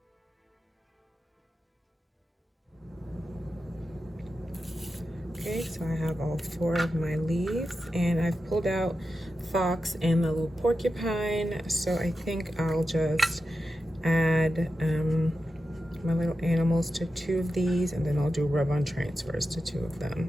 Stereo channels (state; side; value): normal; both; correlation 0.90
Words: Okay, so I have all 4 of my leaves, and I've pulled out fox and the little porcupine, so I think I'll just add my little animals to 2 of these, and then I'll do rub-on transfers to 2 of them.